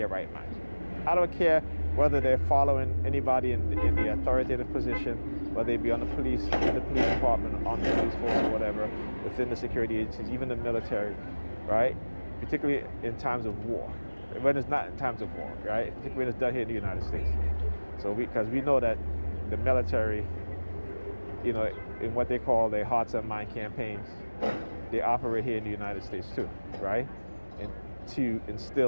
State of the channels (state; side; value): inverted; both; correlation -1.00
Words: right mind. I don't care whether they're following anybody in the authoritative position, whether they be on the police, in the police department, on the police force or whatever, within the security agencies, even the military, right? Particularly in times of war. When it's not in times of war, right? Particularly when it's done here in the United States. So because we know that the military, you know, in what they call their hearts and mind campaigns, they operate here in the United States too, right? And to